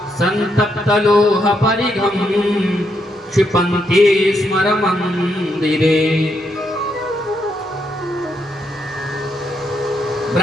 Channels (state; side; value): normal; both; correlation 0.78